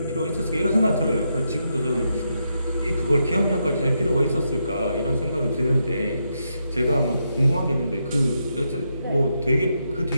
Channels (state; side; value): inverted; both; correlation -0.82